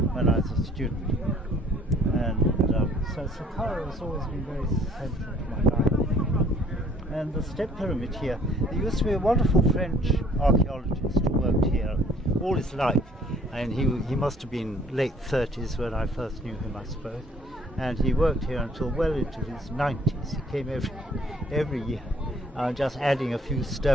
when I was a student, and so Saqqara has always been very central to my life. And the step pyramid here, there used to be a wonderful French archaeologist who worked here all his life, and he must have been late 30s when I first knew him, I suppose, and he worked here until well into his 90s. He came every year, just adding a few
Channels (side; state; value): both; normal; correlation 0.58